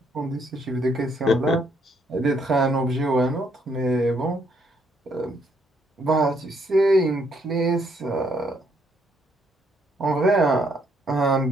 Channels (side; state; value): both; normal; correlation 0.71